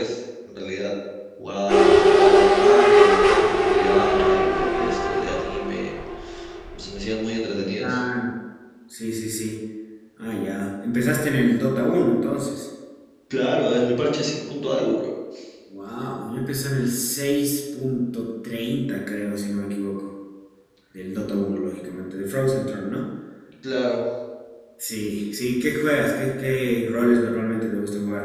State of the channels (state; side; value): identical; both; correlation 1.00